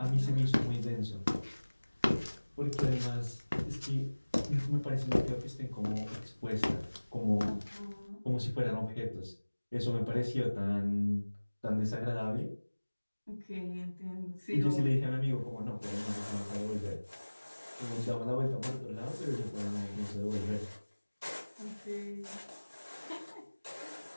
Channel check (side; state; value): both; inverted; correlation -1.00